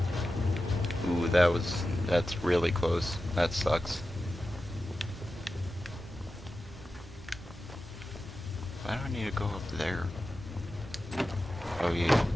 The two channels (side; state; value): both; normal; correlation 0.92